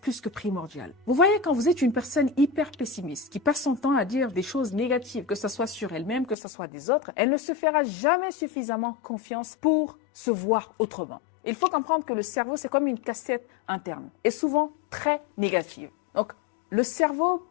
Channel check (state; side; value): drops out; right; at 6.4 s